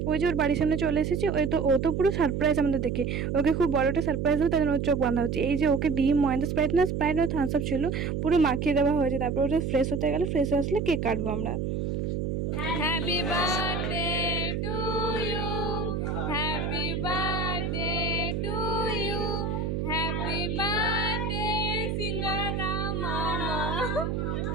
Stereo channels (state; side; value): noise; right; hum, 1 dB below the sound